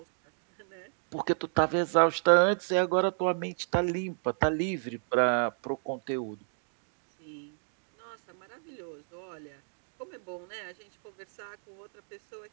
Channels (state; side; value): silent; left; digital silence